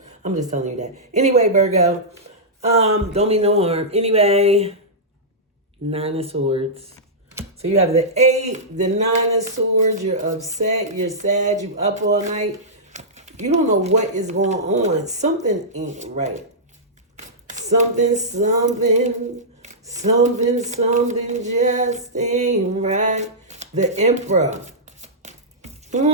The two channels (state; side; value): normal; both; correlation -0.13